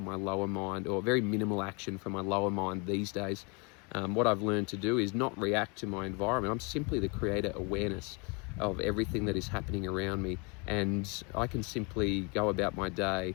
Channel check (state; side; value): quieter; right; 31.5 dB